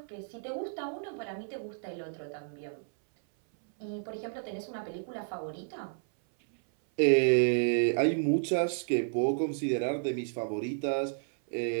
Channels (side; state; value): left; silent; 57 dB below the other